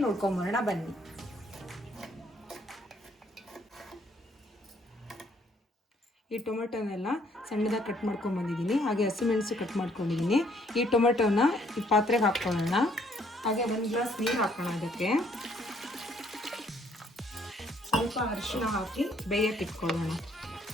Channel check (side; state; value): both; normal; correlation 0.66